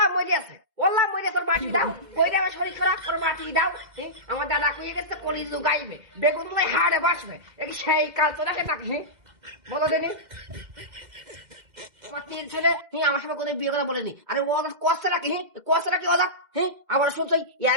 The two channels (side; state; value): left; late; 2.1 ms